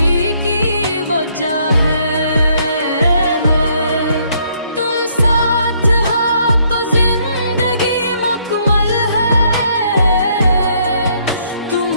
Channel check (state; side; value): inverted; both; correlation -0.68